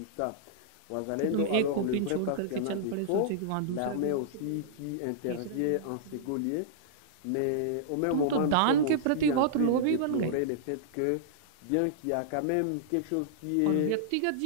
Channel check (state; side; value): different; both; correlation -0.02